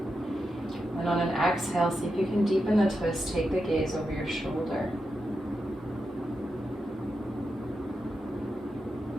And on an exhale, see if you can deepen the twist, take the gaze over your shoulder.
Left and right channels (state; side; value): normal; both; correlation 0.87